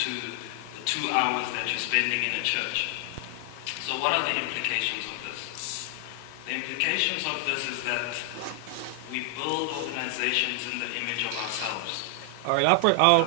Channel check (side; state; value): both; different; correlation 0.00